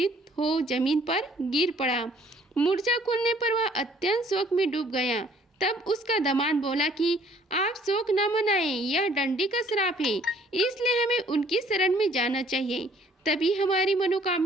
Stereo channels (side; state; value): both; normal; correlation 0.59